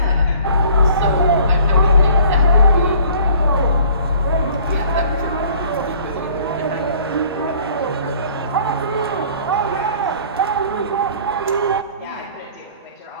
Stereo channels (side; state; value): both; inverted; correlation -0.52